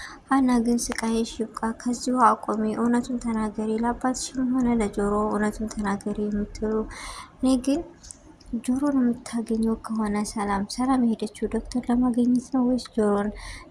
ሀና ግን ስቃይሽ ይብቃ፣ ከዚሁ አቆሚ፣ እውነቱን ተናገሪ፣ ለአባትሽም ሆነ ለጆሮ እውነቱን ተናገሪ የምትሉ እኔ ግን ጆሮን የምታገኘው ከሆነ ሰላም የሄደችው ዶክተር ለማግኘት ነው ወይስ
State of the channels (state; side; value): identical; both; correlation 1.00